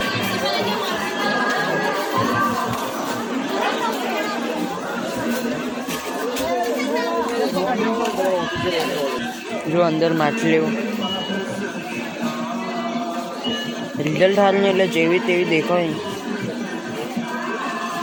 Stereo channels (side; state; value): both; identical; correlation 1.00